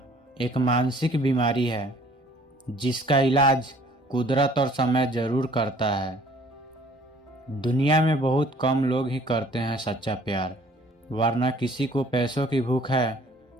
एक मानसिक बीमारी है जिसका इलाज कुदरत और समय जरूर करता है। दुनिया में बहुत कम लोग ही करते हैं सच्चा प्यार, वरना किसी को पैसों की भूख है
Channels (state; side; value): normal; both; correlation 0.56